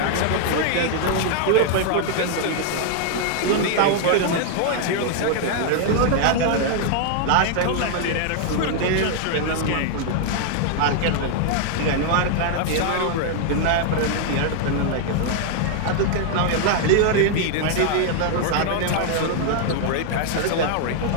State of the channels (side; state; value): both; different; correlation 0.00